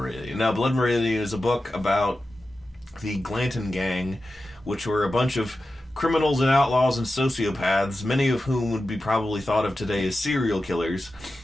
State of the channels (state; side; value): normal; both; correlation 0.93